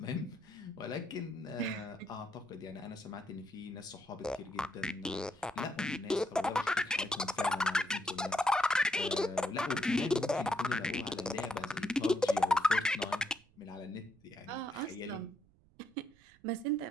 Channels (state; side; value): noise; right; rumble, 29 dB below the sound